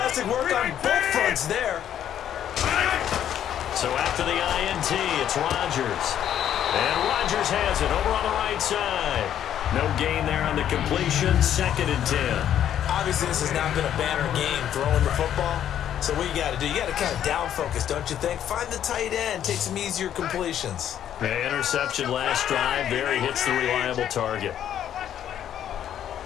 work on both fronts there. So after the INT, it's Rodgers. And Rodgers has it over on the right side. No gain there on the completion, 2nd and 10. Obviously, this has not been a banner game throwing the football. So what you got to do, you got to kind of down focus, don't you think? Find the tight end, take some easier completions. The interception last drive there. He hits the reliable target.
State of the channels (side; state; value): right; quieter; 10.3 dB